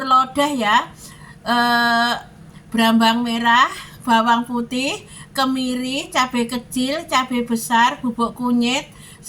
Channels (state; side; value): identical; both; correlation 1.00